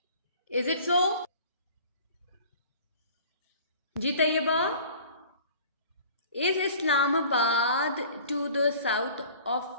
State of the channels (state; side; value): inverted; both; correlation -0.47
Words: Is it so? जी Tayyaba, is Islamabad to the south